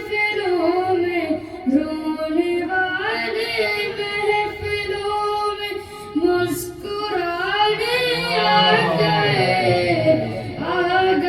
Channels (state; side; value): identical; both; correlation 1.00